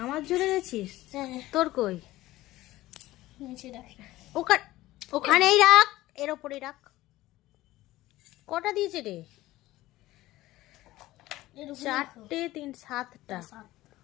আমার জন্য এনেছিস? হ্যাঁ, তোর কই? নিচে রাখি। ওখানেই রাখ, এর ওপরেই রাখ। কটা দিয়েছে রে? এর উপরে রাখো। 4টে 3 7টা। সাত।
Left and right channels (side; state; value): right; quieter; 16.9 dB